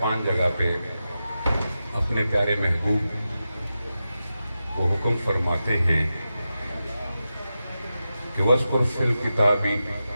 جگہ پہ اپنے پیارے محبوب کو حکم فرماتے ہیں کہ وَاذْكُرْ فِي الْكِتَابِ،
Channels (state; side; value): inverted; both; correlation -0.91